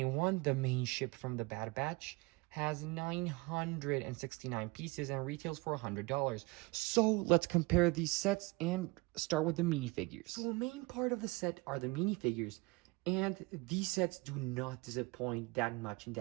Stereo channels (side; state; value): left; quieter; 25.4 dB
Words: the main ship from the Bad Batch, has 969 pieces and retails for $100. So let's compare these sets and start with the minifigures. So the main part of the set are the minifigures, and these sets do not disappoint that much in